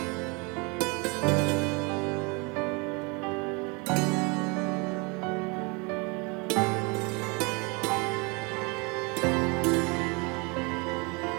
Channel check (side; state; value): left; quieter; 29.7 dB